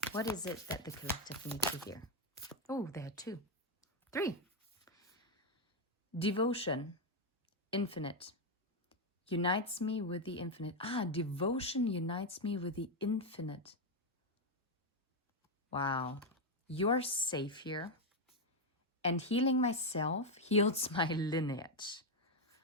What is it that the collective needs to hear? Oh, there are 2. 3. Devotion, infinite, unites me with the infinite. Devotion unites me with the infinite. Wow. You're safe here. And healing myself heals my lineage.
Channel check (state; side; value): normal; both; correlation 0.04